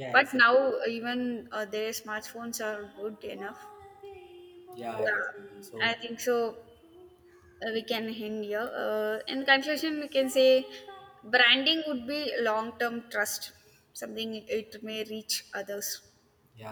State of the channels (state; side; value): identical; both; correlation 1.00